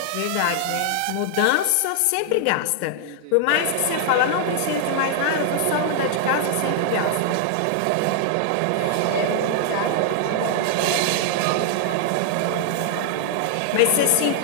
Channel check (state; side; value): different; both; correlation 0.00